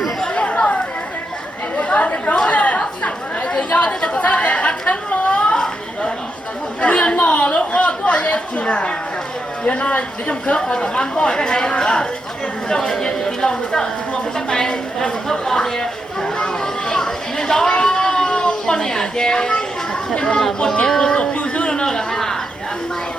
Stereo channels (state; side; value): normal; both; correlation 0.83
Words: tự do thì có sao để thắt thân lo nguyên mỏ lúc đó có gì giờ nó để trong khớp rồi tầm ăn bỏi cái này trong cái gì thì lòng người ta thì mua cái này trong khớp còn gì nên đó con này chè nhưng mà con chè tôi tổ tiêu dư nữa là hay là